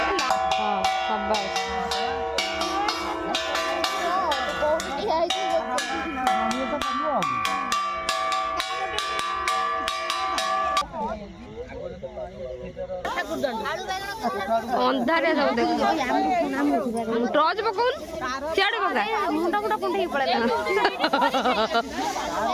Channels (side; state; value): both; identical; correlation 1.00